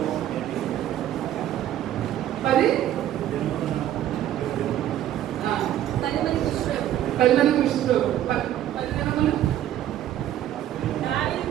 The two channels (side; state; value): left; quieter; 12.1 dB